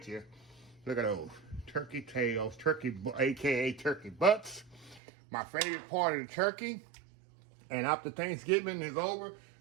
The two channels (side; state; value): left; drops out; at 5.0 s